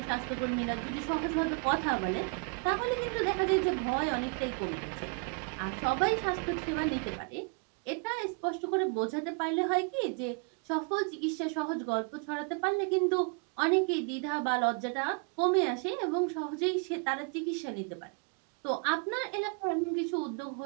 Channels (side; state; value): left; quieter; 34.7 dB